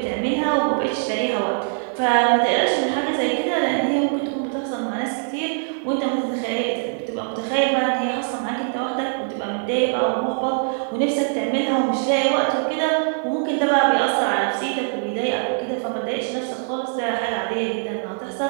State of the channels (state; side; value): silent; left; 60 dB below the other